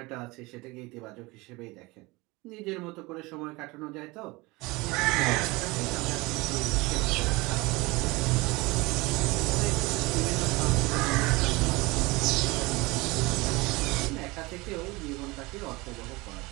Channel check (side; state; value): left; quieter; 23.3 dB